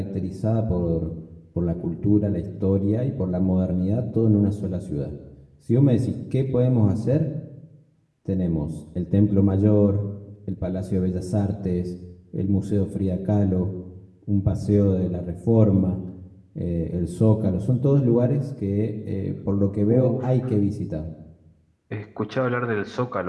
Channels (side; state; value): both; identical; correlation 1.00